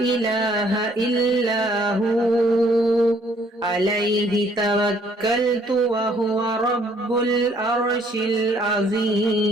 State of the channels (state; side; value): normal; both; correlation 0.63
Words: إلا هو عليه توكلت وهو رب العرش